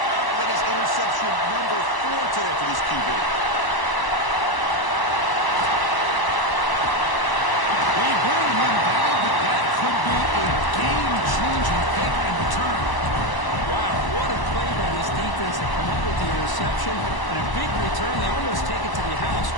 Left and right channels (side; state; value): right; late; 1.0 ms